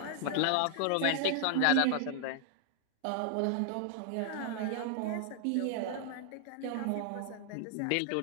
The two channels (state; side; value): different; both; correlation 0.00